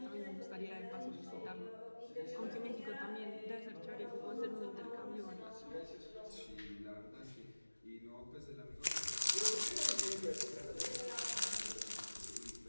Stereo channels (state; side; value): inverted; both; correlation -1.00